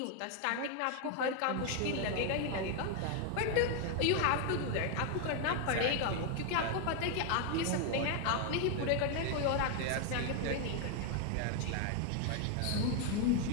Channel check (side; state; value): both; different; correlation 0.01